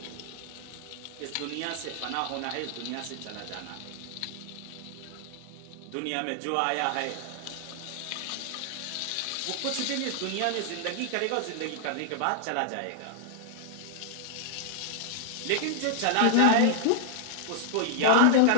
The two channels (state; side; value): different; both; correlation -0.01